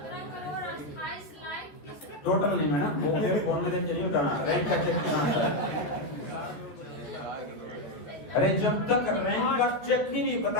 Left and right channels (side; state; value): right; late; 13 ms